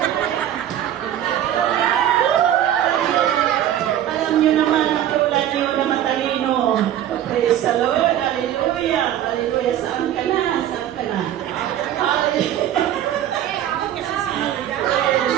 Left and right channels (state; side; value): quieter; left; 11.4 dB